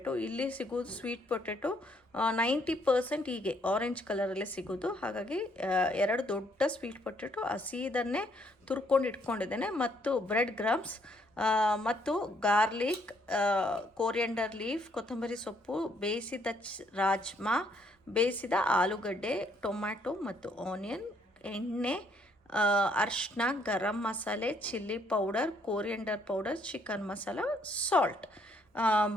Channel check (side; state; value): both; normal; correlation 0.68